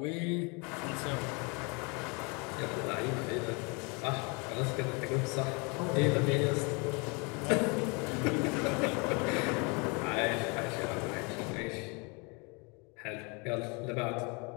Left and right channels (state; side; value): quieter; right; 30.9 dB